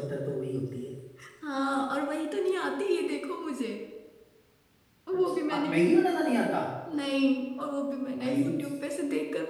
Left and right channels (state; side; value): identical; both; correlation 1.00